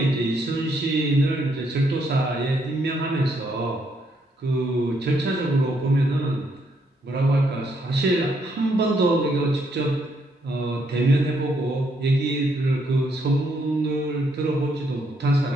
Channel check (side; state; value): both; normal; correlation 0.74